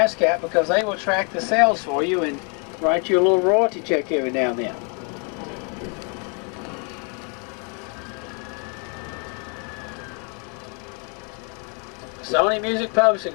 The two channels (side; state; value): right; quieter; 37.3 dB